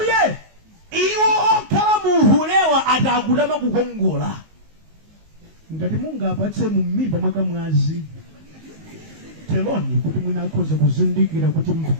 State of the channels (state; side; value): late; left; 19 ms